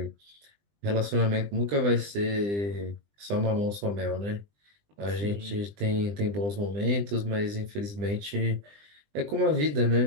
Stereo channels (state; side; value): late; left; 20 ms